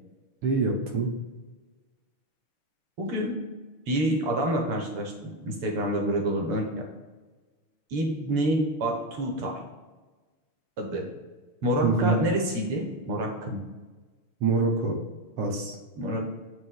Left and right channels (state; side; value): late; left; 7.0 ms